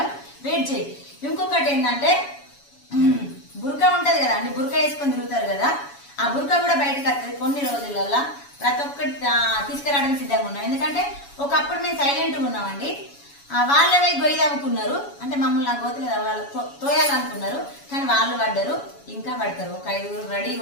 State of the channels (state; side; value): late; right; 7.1 ms